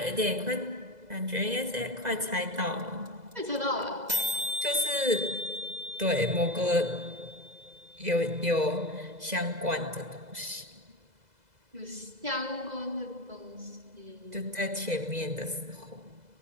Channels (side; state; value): left; late; 2.0 ms